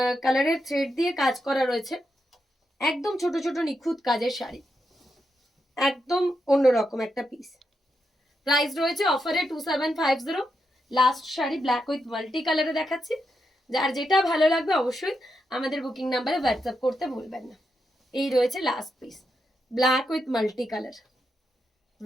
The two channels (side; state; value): both; normal; correlation 0.84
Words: কালারের থ্রেড দিয়ে কাজ করা রয়েছে। একদম ছোট ছোট নিখুঁত কাজের শাড়ি, একদম অন্যরকম একটা পিস। প্রাইস রয়েছে অফারে 2750। Last sari black with multi কালারে দেখাচ্ছি। যার যেটা ভালো লাগবে অবশ্যই আমাদের বুকিং নাম্বারে হোয়াটসঅ্যাপ করতে ভুলবেন না। এই রয়েছে last piece, black with multi colour.